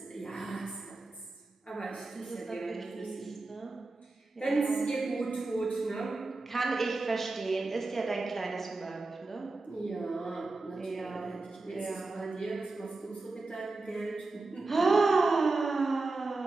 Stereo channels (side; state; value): left; quieter; 3.4 dB